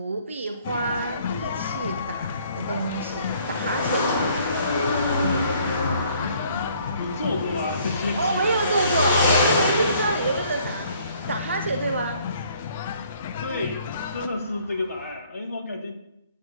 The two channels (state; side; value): inverted; both; correlation -0.61